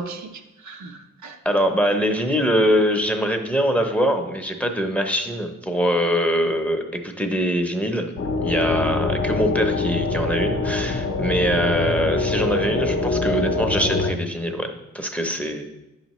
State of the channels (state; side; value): normal; both; correlation 0.56